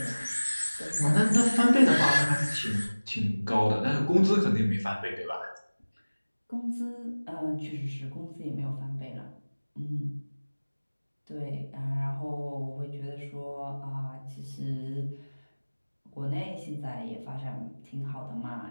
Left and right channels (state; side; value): inverted; both; correlation -1.00